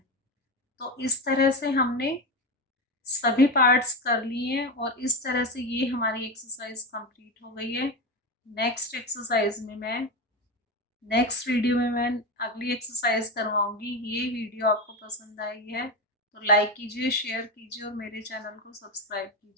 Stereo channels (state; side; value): normal; both; correlation 0.17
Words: तो इस तरह से हमने सभी पार्ट्स कर लिए हैं और इस तरह से ये हमारी एक्सरसाइज कंप्लीट हो गई है। नेक्स्ट एक्सरसाइज में मैं नेक्स्ट वीडियो में मैं अगली एक्सरसाइज करवाऊंगी। ये वीडियो आपको पसंद आई है तो लाइक कीजिए, शेयर कीजिए और मेरे चैनल को सब्सक्राइब